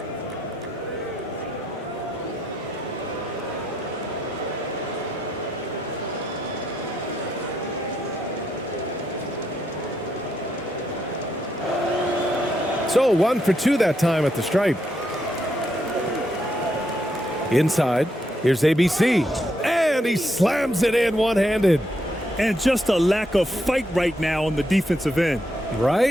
So 1 for 2 that time at the stripe. Inside, here's ABC, and he slams it in one-handed. And just a lack of fight right now on the defensive end.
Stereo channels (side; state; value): both; normal; correlation 0.78